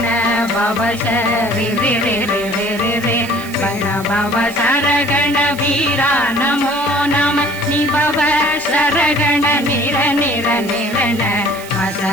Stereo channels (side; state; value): right; noise; hiss, 16 dB below the sound